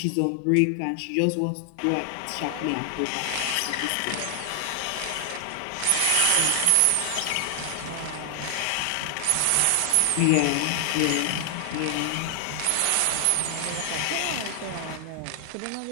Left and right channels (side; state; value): both; different; correlation 0.00